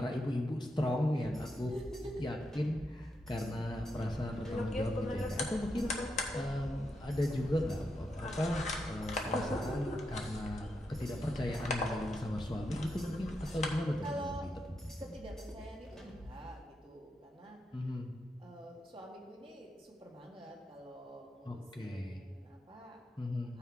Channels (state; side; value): normal; both; correlation 0.84